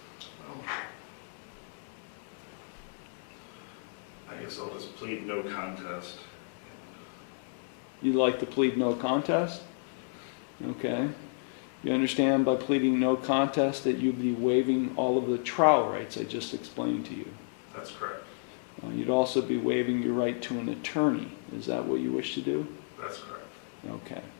guess I'll just plead no contest. You'd like to plead no contest? Okay. You understand by pleading no contest that you'd be waiving all of the trial rights I just explained to you. That's correct. You'd also be waiving your right to an attorney. Is that what you wish to do? That's correct. Okay.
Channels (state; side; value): silent; right; 57 dB below the other